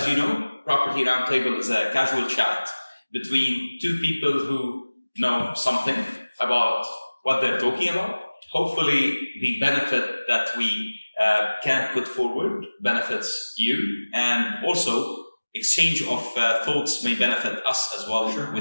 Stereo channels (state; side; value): inverted; both; correlation -1.00